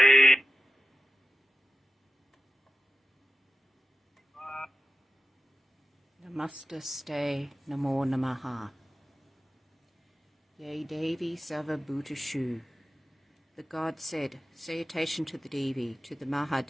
Namaste, Namo Namaha. Yea, Devi Sarvabhutashu. The god said, salutation to the Devi, to the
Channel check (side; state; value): both; normal; correlation 0.94